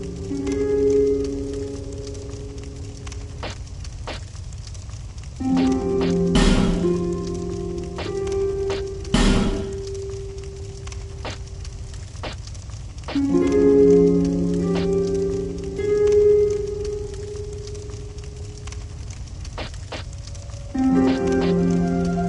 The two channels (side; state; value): both; identical; correlation 1.00